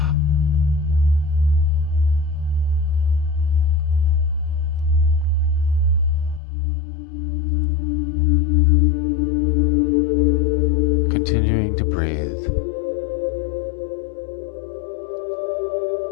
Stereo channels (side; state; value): right; drops out; at 6.4 s